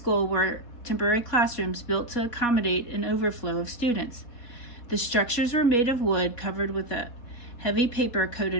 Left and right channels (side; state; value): right; late; 4.2 ms